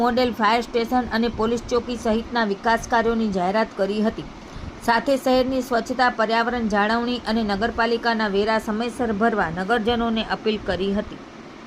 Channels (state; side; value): identical; both; correlation 1.00